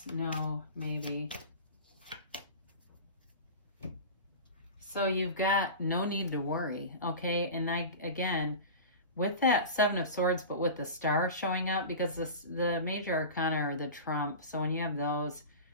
no, maybe. So you've got no need to worry, okay? And again, with that Seven of Swords, but with the star showing up, because the major arcana are the trump. So when you have those,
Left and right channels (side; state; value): both; inverted; correlation -0.31